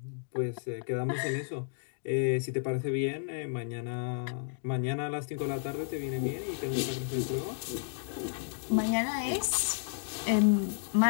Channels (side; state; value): right; silent; digital silence